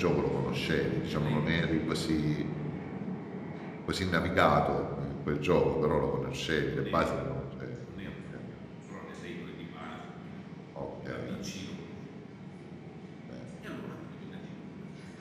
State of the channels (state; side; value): identical; both; correlation 1.00